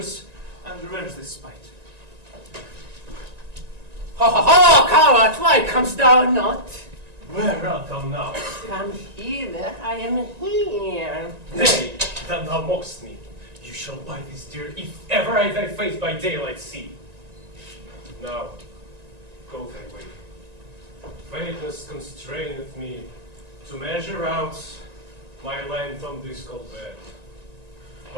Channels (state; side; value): late; left; 1.9 ms